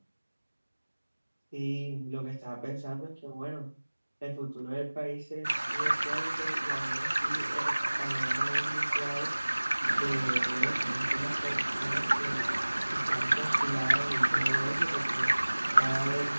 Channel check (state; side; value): inverted; both; correlation -1.00